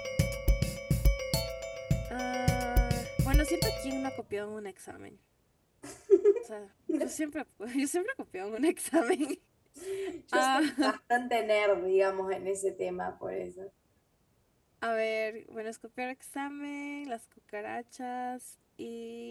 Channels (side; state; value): both; identical; correlation 1.00